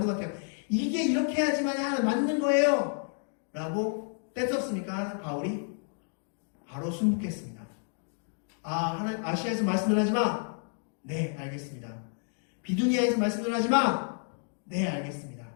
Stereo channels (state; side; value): silent; right; 55 dB below the other